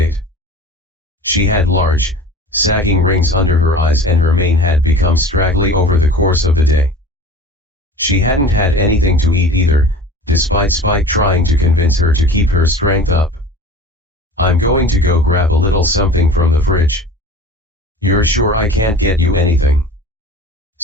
She had large, sagging rings under her eyes and her mane had become straggly over the course of the day. She hadn't had anything to eat either, despite Spike trying to convince her to keep her strength up. I'm going to go grab a little something from the fridge. You're sure I can't get you anything?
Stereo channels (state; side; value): normal; both; correlation 0.40